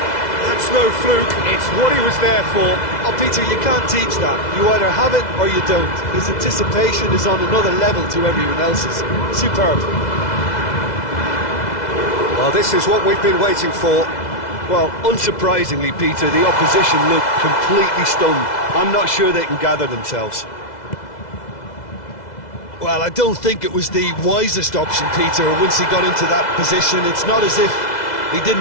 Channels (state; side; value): late; right; 2.0 ms